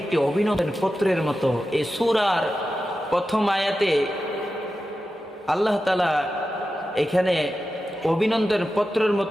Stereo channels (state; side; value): normal; both; correlation 0.92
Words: একটি অভিনন্দন পত্রের মতো। এই সূরার প্রথম আয়াতে আল্লাহ তাআলা এখানে অভিনন্দন পত্রের